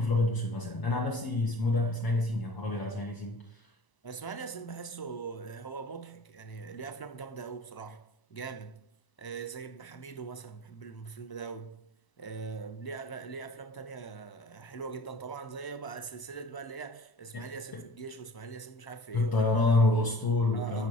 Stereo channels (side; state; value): right; late; 1.0 ms